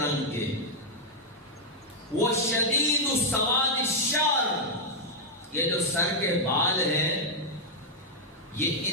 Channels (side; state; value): both; normal; correlation -0.02